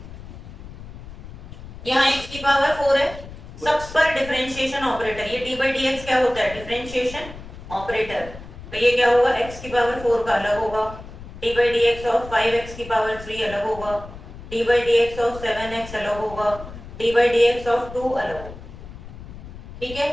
यहाँ x की पावर 4 है, सब पर डिफरेंशिएशन ऑपरेटर, ये dy dx क्या होता है, डिफरेंशिएशन ऑपरेटर, तो ये क्या होगा x की पावर 4 का अलग होगा, dy dx ऑफ 5x की पावर 3 अलग होगा, dy dx ऑफ 7x अलग होगा, dy dx ऑफ 2 अलग होगा। ठीक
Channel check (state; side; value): noise; left; rumble, 14 dB below the sound